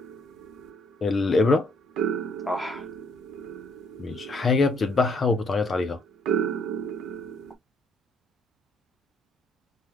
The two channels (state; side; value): normal; both; correlation 0.66